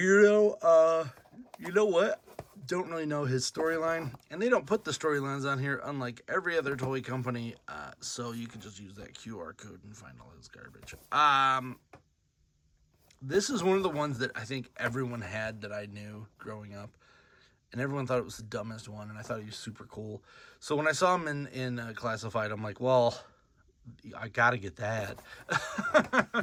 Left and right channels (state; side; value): identical; both; correlation 1.00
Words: You know what? Don't really know his storyline, and they don't put the storylines on here, unlike every other toy company. So you can just use that QR code and find all his garbage. This is one of the ones that I think everyone had that I knew growing up. And everyone thought it was the dumbest one, and I thought he was super cool. So when I saw him in Classified, I'm like, well, I gotta get that.